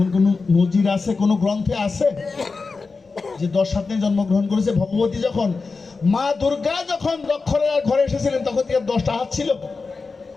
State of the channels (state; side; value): quieter; right; 4.3 dB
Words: কোনো নজির আছে, কোনো গ্রন্থে আছে যে 10 হাত নিয়ে জন্মগ্রহণ করেছে? ভগবতী যখন, মা দুর্গা যখন দক্ষরার ঘরে এসেছিলেন তখন কি 10টা হাত